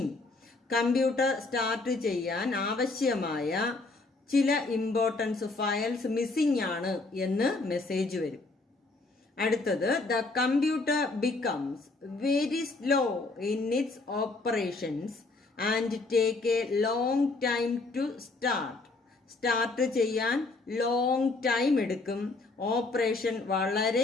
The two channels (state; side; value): quieter; right; 3.5 dB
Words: Computer start ചെയ്യാൻ ആവശ്യമായ ചില ഇമ്പോർട്ടൻസ് ഫയൽസ് മിസ്സിംഗ് ആണ് എന്ന് മെസ്സേജ് വരും. അടുത്തത് the computer becomes very slow in its operations and take a long time to start. Start ചെയ്യാൻ long time എടുക്കും, operation